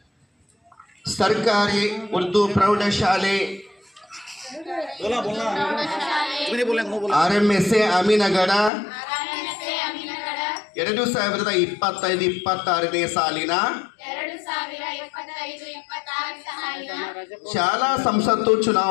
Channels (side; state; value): right; drops out; at 8.7 s